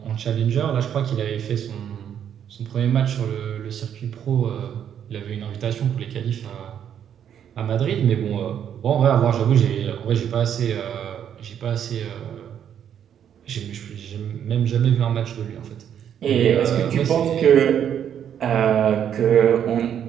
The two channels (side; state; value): left; quieter; 9.1 dB